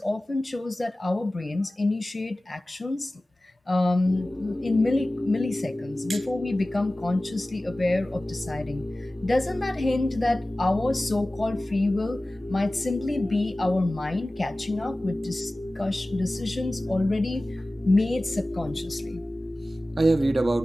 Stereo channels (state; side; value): normal; both; correlation 0.97